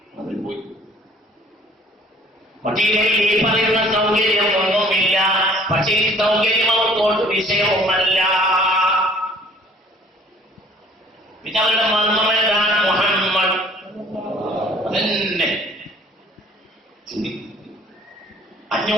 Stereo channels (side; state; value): both; normal; correlation 0.55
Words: മദീനയിൽ ഈ പറയുന്ന സൗകര്യം ഒന്നുമില്ല. പക്ഷേ ഈ സൗകര്യം അവർക്കോട്ട് വിഷയവുമല്ല. പിന്നെ അവരുടെ മർമ്മം എന്താണ്? മുഹമ്മദ് തന്നെ.